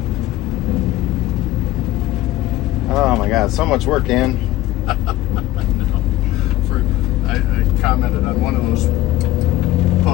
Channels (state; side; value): quieter; right; 15.5 dB